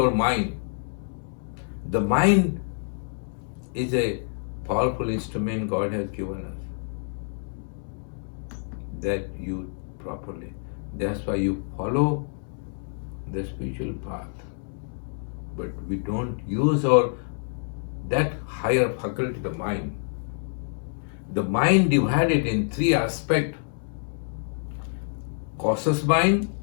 mind. The mind is a powerful instrument God has given us that use properly. That's why you follow the spiritual path. But we don't use that higher faculty, the mind. The mind divided in three aspects: conscious mind,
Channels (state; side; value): silent; right; digital silence